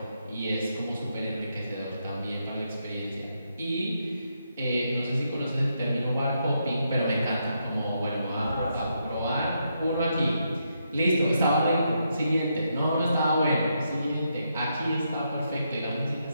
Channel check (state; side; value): inverted; both; correlation -0.80